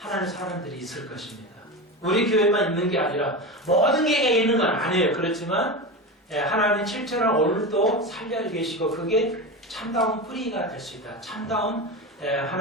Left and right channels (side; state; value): both; normal; correlation 0.22